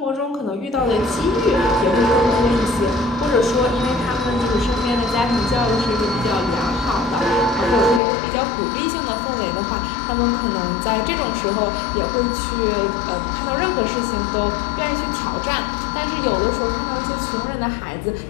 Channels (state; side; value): drops out; right; at 8.0 s